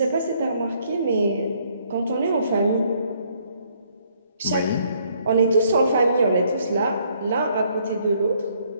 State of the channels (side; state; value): both; inverted; correlation -0.67